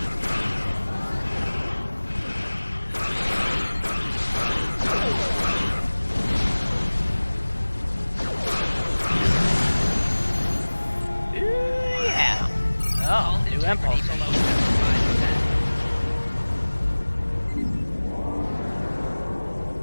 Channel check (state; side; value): inverted; both; correlation -1.00